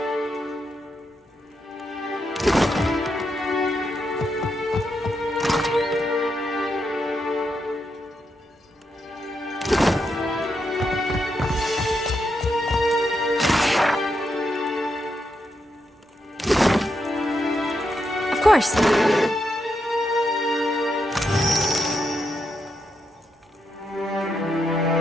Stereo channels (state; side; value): normal; both; correlation 0.82